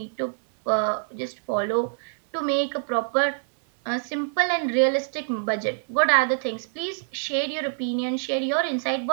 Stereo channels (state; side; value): silent; left; 59 dB below the other